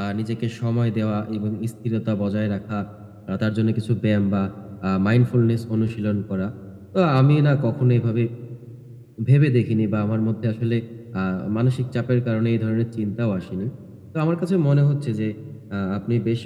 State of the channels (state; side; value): identical; both; correlation 1.00